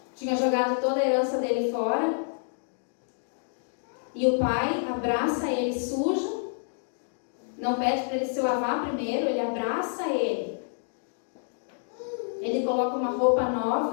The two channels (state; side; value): silent; right; digital silence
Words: tinha jogado toda a herança dele fora, e o pai abraça ele sujo, não pede para ele se lavar primeiro, ele abraça ele. Ele coloca uma roupa